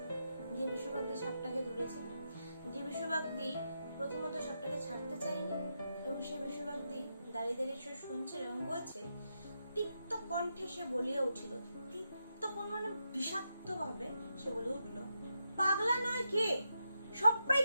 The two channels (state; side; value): inverted; both; correlation -0.85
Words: যে বিশ্ববাগদি সাপটাকে ধরেছিল। যে বিশ্ববাগদি প্রথমত সাপটাকে ছাড়তে চায়নি এবং সে বিশ্ববাগদি দাঁড়িয়ে দাঁড়িয়ে সে শুনছিল এবং বলছে, তিক্ত কণ্ঠে সে বলিয়া উঠিল, তিক্ত মানে বিষাক্ত ভাবে সে বলে উঠলো, পাগলা নয় কে?